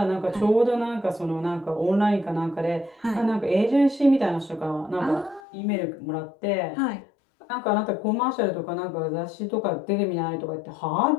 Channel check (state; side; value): drops out; right; at 5.4 s